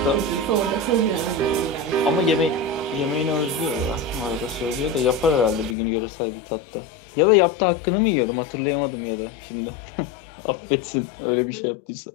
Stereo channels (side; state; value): right; drops out; at 5.8 s